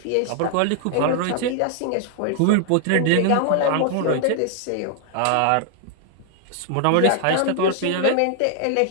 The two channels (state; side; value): different; both; correlation 0.00